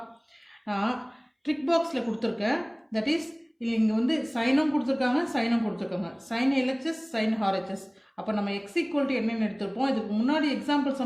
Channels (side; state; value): both; identical; correlation 1.00